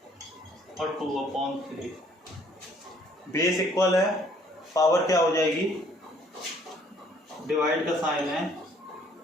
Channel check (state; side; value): normal; both; correlation 0.61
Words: और 2/3। बेस इक्वल है, पावर क्या हो जाएगी, डिवाइड का साइन है,